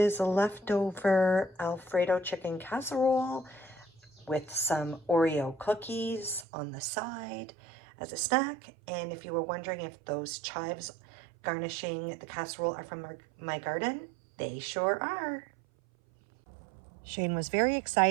a leftover Alfredo chicken casserole with some Oreo cookies on the side as a snack. And if you were wondering if those chives garnishing the casserole are from my garden, they sure are. Shane was very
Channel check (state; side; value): drops out; left; at 6.5 s